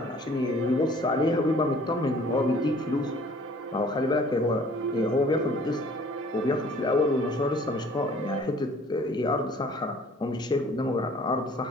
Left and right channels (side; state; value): both; normal; correlation 0.53